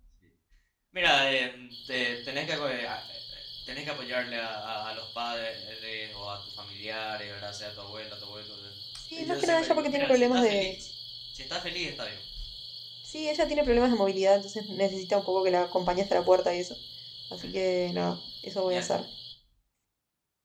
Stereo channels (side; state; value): both; identical; correlation 1.00